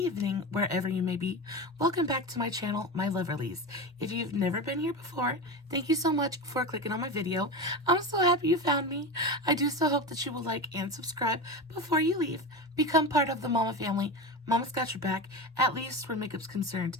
wherever you may be. Welcome back to my channel, my Loverlies. If you've never been here before, thank you so much for clicking on my video. I'm so happy you found me. I do so hope that you will like and subscribe before you leave. Become part of the Mama family. Mama's got your back, at least where makeup's concerned,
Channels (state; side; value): normal; both; correlation 0.23